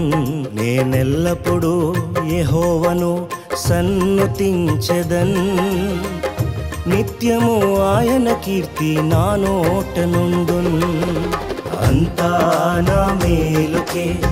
నేనెల్లప్పుడూ యెహోవాను సన్నుతించెదన్, నిత్యము ఆయన కీర్తి నా నోట నుండున్. అంతా నా మేలుకే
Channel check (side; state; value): both; identical; correlation 1.00